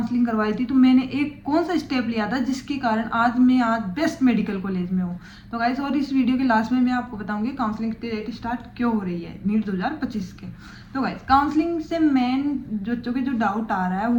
करवाई थी तो मैंने एक कौन सा स्टेप लिया था जिसके कारण आज बेस्ट मेडिकल कॉलेज में हूँ। तो गाइस, और इस वीडियो के लास्ट में मैं आपको बताऊंगी काउंसलिंग की डेट स्टार्ट क्यों हो रही है नीट 2025 के। तो गाइस, काउंसलिंग से मेन बच्चों के जो डाउट आ रहा है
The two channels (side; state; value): both; identical; correlation 1.00